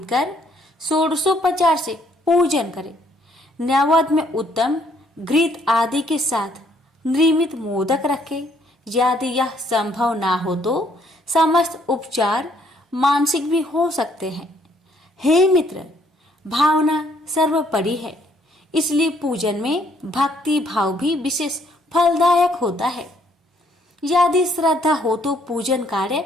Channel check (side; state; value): both; normal; correlation 0.66